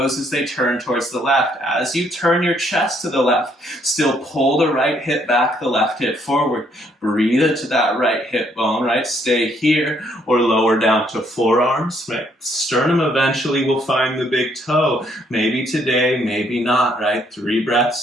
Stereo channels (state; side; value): normal; both; correlation 0.69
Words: as they turn towards the left. As you turn your chest to the left, still pull the right hip back, the left hip forward. Breathe into that right hip bone, right? Stay here or lower down to forearms, right? Sternum eventually will find the big toe. Maybe today, maybe not, right? 3